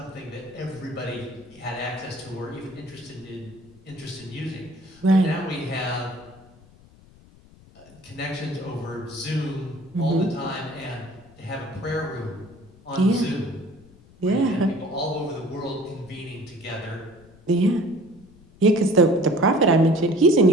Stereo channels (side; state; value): left; noise; rumble, 25 dB below the sound